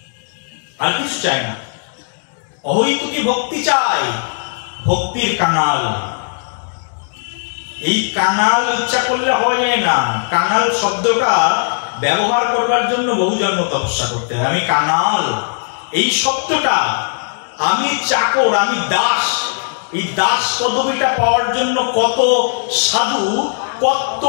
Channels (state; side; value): silent; right; digital silence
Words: আর কিছু চাই না, অহৈতুকী ভক্তি চাই, ভক্তির কাঙাল। এই কাঙাল ইচ্ছা করলে হওয়া যায় না। কাঙাল শব্দটা ব্যবহার করবার জন্য বহু জন্ম তপস্যা করতে হয়। আমি কাঙাল, এই শব্দটা, আমি চাকর, আমি দাস, এই দাস পদবিটা পাওয়ার জন্য কত সাধু কত